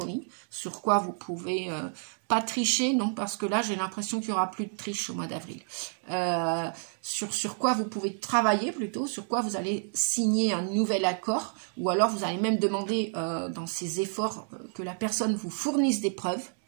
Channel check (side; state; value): left; silent; 58 dB below the other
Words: sur quoi vous pouvez pas tricher, non, parce que là, j'ai l'impression qu'il n'y aura plus de triche au mois d'avril. Sur quoi vous pouvez travailler plutôt, sur quoi vous allez signer un nouvel accord, ou alors vous allez même demander dans ces efforts que la personne vous fournisse des preuves,